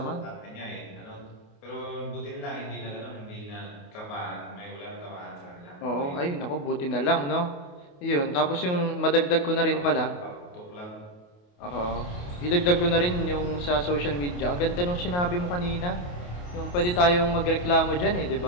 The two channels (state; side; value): late; right; 28 ms